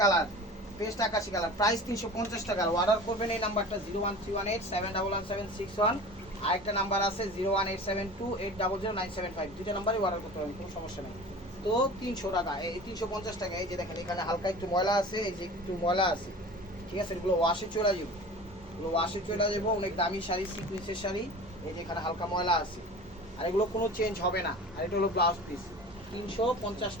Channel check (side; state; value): both; normal; correlation 0.38